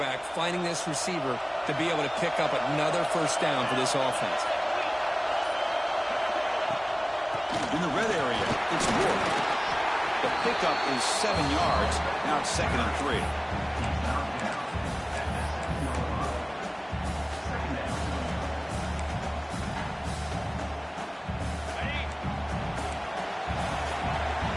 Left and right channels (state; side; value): identical; both; correlation 1.00